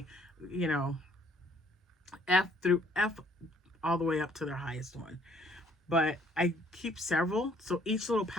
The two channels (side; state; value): both; normal; correlation 0.62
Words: you know, F all the way up to their highest one. But I keep several, so each little